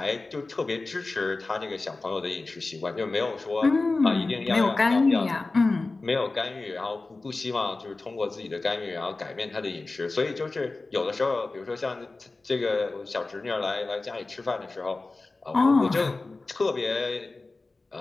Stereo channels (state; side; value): quieter; right; 3.4 dB